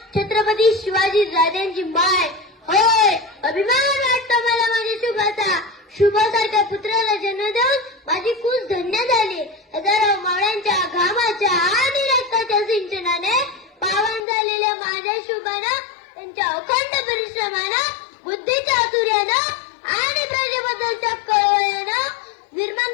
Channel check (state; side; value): drops out; right; at 14.2 s